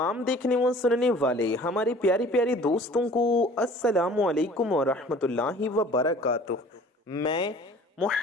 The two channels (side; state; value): both; normal; correlation 0.49